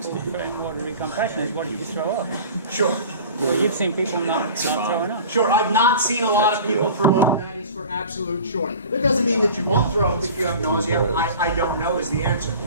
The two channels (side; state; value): both; inverted; correlation -0.40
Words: for in-water recompression is what if you throw up? Sure. Well, you've seen people not throwing up. Sure, I've not seen a lot of people throw up, that is for absolute sure. That doesn't mean that you won't throw up if you have nausea. I don't know is the answer.